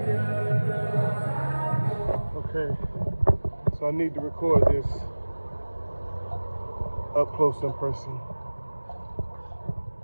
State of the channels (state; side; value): inverted; both; correlation -1.00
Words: Okay. So I need to record this up close in person.